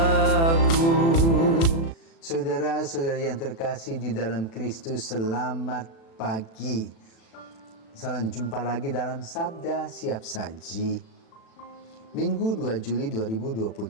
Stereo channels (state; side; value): late; right; 36 ms